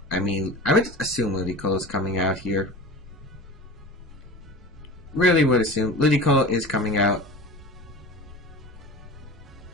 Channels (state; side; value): normal; both; correlation 0.34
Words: I mean, I would assume Ludicolo's coming out here. Really would assume Ludicolo is coming out.